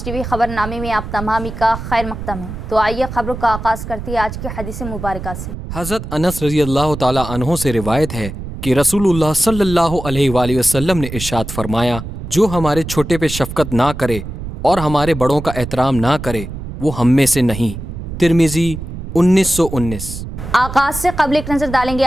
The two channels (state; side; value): noise; right; rumble, 8 dB below the sound